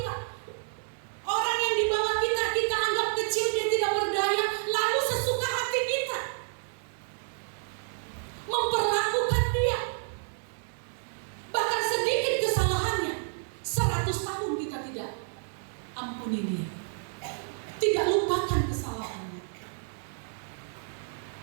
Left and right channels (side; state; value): left; silent; digital silence